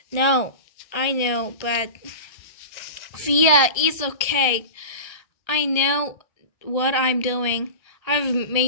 "No, I know, but Via, it's okay. I know what I'm doing. I've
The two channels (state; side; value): late; right; 1.7 ms